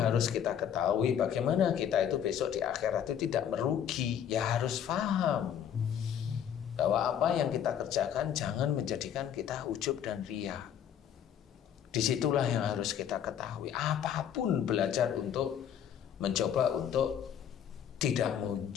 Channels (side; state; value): right; quieter; 9.1 dB